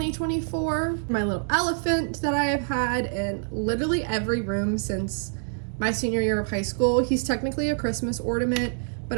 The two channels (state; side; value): silent; left; digital silence